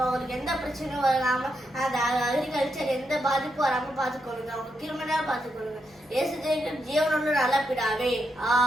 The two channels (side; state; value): both; normal; correlation 0.82